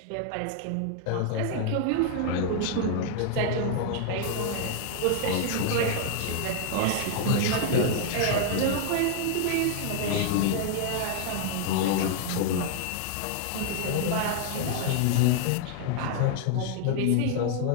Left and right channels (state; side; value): different; both; correlation 0.00